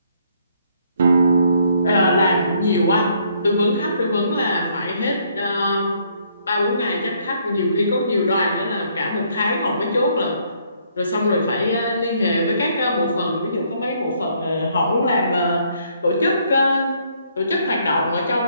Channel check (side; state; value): both; inverted; correlation -0.68